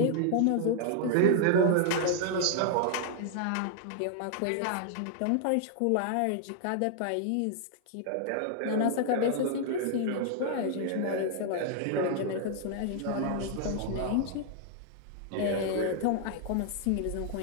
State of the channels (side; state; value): both; different; correlation 0.00